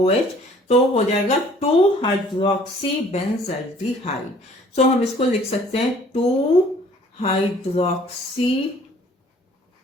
तो हो जाएगा 2-हाइड्रोक्सी बेंजल्डिहाइड. सो हम इसको लिख सकते हैं two hydroxy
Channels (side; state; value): both; normal; correlation 0.55